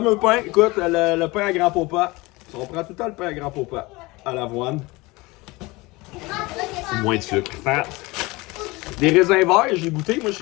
pain, écoute, le pain à grand popa. On prend tout le temps le pain à grand popa à l'avoine. Moins de sucre. Fat. Des raisins verts, j'ai goûté. Moi,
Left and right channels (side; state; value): right; quieter; 22.7 dB